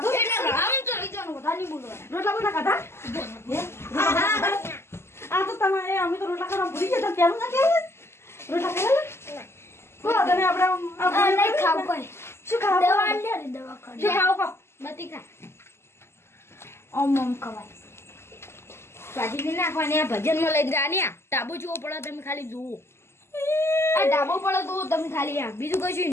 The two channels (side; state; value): right; late; 0.12 ms